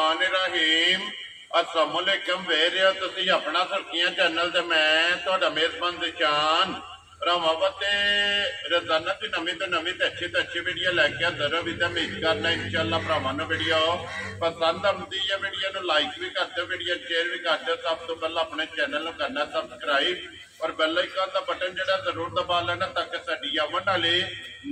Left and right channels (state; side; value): identical; both; correlation 1.00